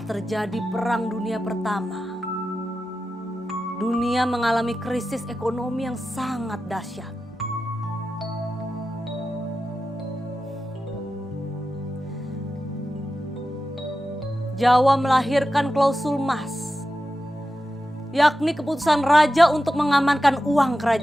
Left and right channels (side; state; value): both; normal; correlation 0.91